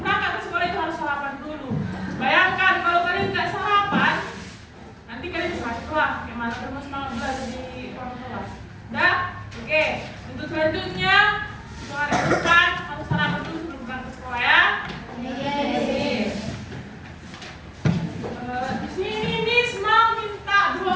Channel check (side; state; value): both; identical; correlation 1.00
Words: berangkat ke sekolah itu harus sarapan dulu. Bayangkan kalau kalian nggak sarapan, nanti kalian bisa sekolah. Gimana terus semangat belajar di orang tua? Dah, oke. Untuk selanjutnya, hari depan harus sarapan dulu sebelum berangkat ke sekolah ya. Di sini Miss mau minta 2